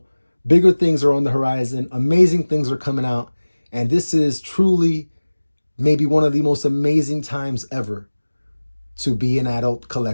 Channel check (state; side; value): inverted; both; correlation -1.00